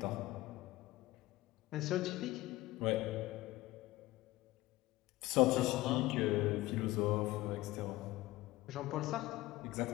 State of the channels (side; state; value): right; quieter; 18.3 dB